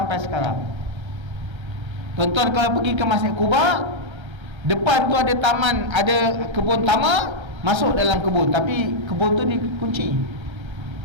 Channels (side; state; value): left; late; 1.5 ms